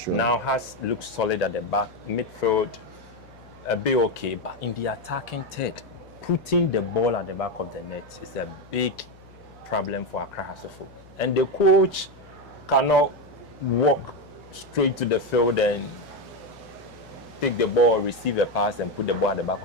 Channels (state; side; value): noise; left; hum, 24 dB below the sound